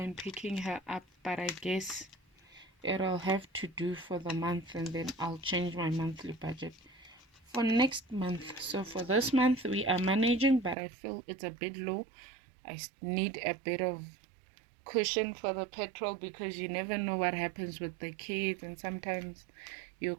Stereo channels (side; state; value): left; drops out; at 10.8 s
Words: picking her up, but I guess it'll have to do for the month, and then I'll change my monthly budget for next month. So for this month we are managing, but I feel it's a bit low. I need a bit of cushion for the petrol because you never know what happens with the kids, and sometimes you